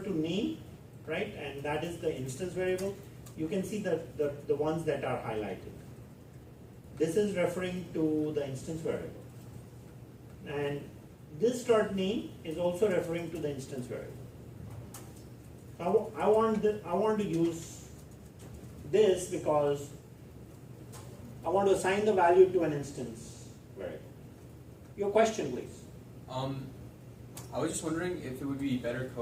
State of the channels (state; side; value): identical; both; correlation 1.00